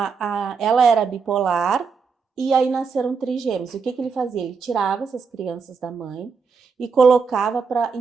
era bipolar e aí nasceram trigêmeos. E o que ele fazia? Ele tirava essas crianças da mãe e colocava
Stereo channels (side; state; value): left; quieter; 5.4 dB